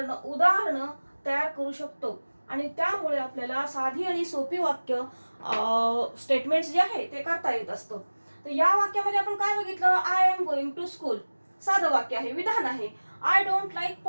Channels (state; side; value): inverted; both; correlation -1.00